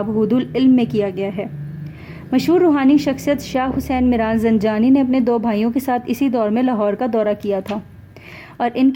حود العلم میں کیا گیا ہے۔ مشہور روحانی شخصیت شاہ حسین میران زنجانی نے اپنے 2 بھائیوں کے ساتھ اسی دور میں لاہور کا دورہ کیا تھا، اور ان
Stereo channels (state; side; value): identical; both; correlation 1.00